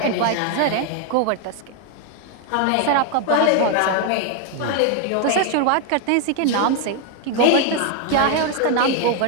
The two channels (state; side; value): different; both; correlation 0.01